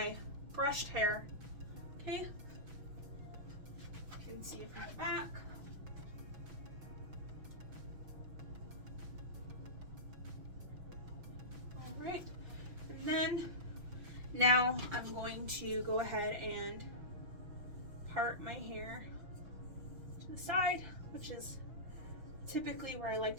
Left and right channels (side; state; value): left; late; 6.0 ms